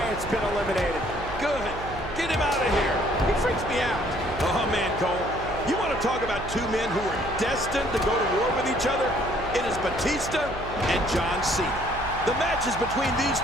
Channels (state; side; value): noise; right; hum, 11 dB below the sound